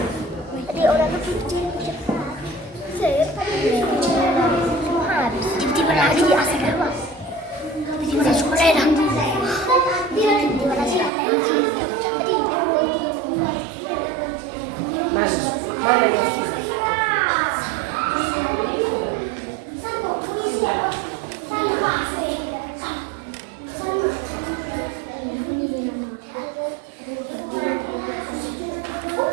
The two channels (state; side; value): drops out; left; at 11.1 s